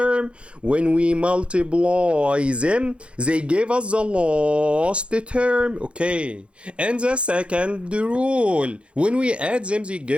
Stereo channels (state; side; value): late; left; 0.059 ms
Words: When we multiply them, they give us the last term. Okay. And the second rule, when we add them, they